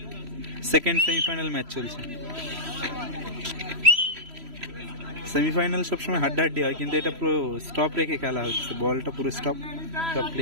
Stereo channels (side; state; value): left; late; 3.0 ms